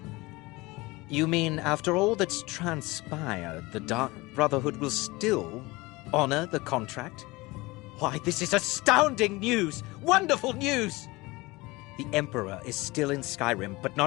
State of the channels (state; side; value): quieter; right; 22.2 dB